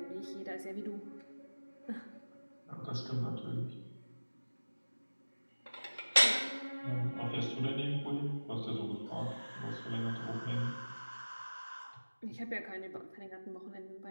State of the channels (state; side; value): inverted; both; correlation -1.00